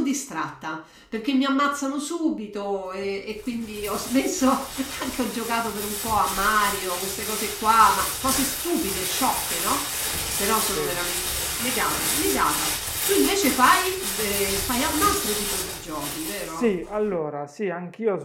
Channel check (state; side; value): identical; both; correlation 1.00